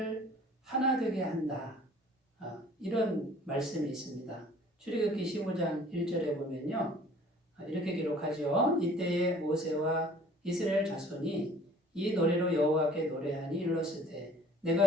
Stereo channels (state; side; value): normal; both; correlation 0.52